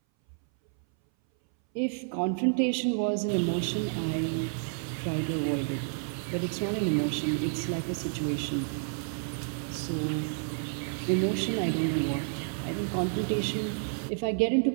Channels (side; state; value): left; silent; 58 dB below the other